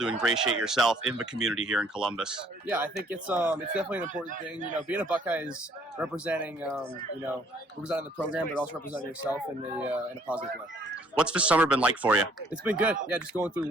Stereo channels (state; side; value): normal; both; correlation 0.62